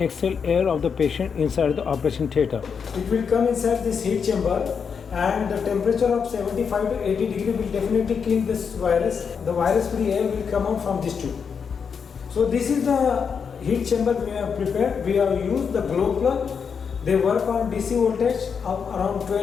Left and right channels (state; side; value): quieter; right; 6.4 dB